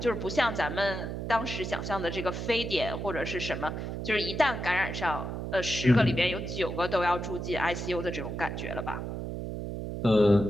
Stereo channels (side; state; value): right; noise; hum, 5 dB below the sound